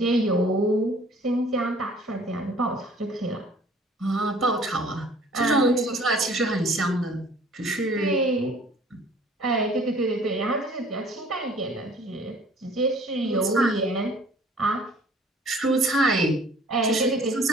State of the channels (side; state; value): both; normal; correlation 0.52